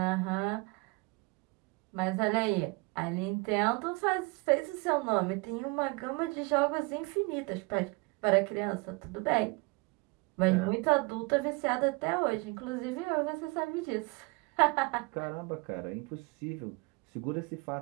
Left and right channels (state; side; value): quieter; left; 27.9 dB